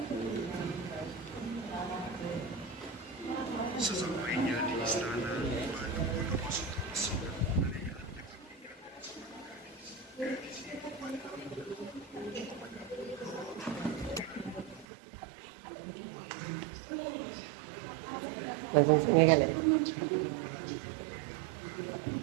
Sesampainya di istana, Banu Bondowoso sudah menanyakan Langsung sini kali.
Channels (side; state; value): left; drops out; at 14.9 s